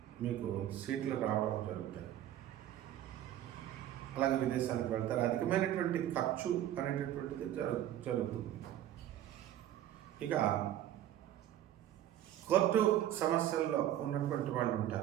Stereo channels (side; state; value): left; quieter; 12.1 dB